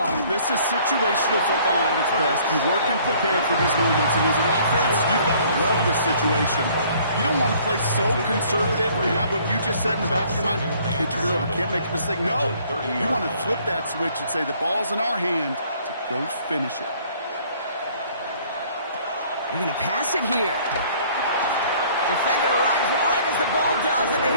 This is situational football at its best. You work and prepare for these moments, and as an offense, you've got to love this situation. You don't want to play so conservative and have what you just said in the back of your mind, can't turn it over, can't make a mistake. No, you want to flip that switch and say the ball's in our hand to go finish it. They're going to pass it here. Defender arrives right as the ball does, and the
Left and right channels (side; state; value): both; inverted; correlation -0.58